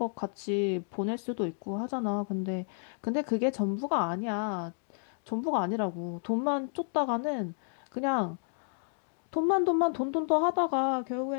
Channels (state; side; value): silent; right; digital silence